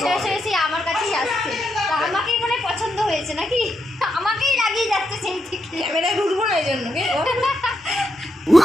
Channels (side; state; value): both; normal; correlation 0.82